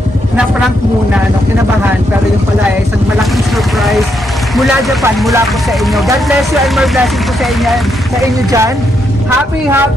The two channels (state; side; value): normal; both; correlation 0.79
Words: na prank muna, kinabahan, pero yung pala isang malaking surprise mula Japan, mula po sa inyo. God bless you and more blessing po sa inyo dyan. Happy